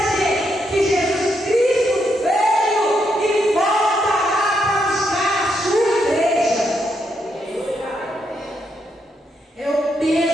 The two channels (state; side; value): normal; both; correlation 0.79